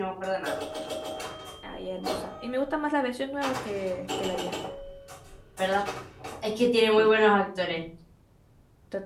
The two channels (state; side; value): identical; both; correlation 1.00